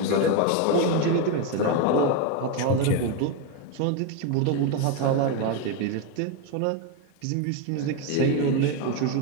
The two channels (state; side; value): different; both; correlation 0.02